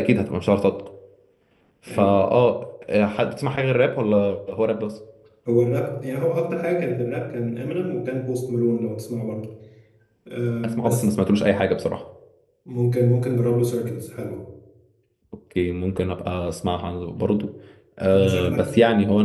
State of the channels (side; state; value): both; identical; correlation 1.00